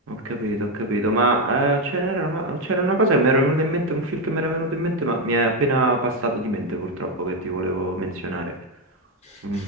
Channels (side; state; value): both; normal; correlation 0.07